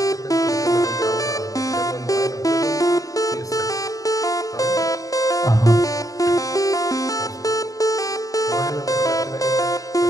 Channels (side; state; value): right; late; 0.17 ms